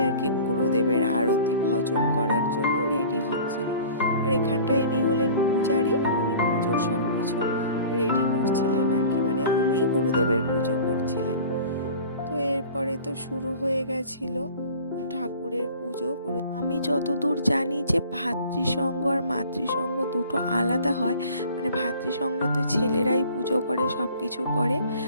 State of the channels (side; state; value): both; inverted; correlation -0.45